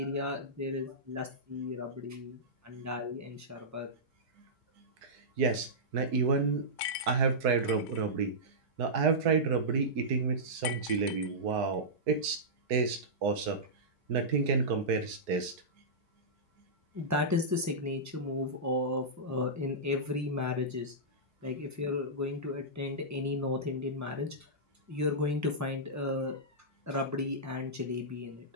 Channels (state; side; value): normal; both; correlation -0.14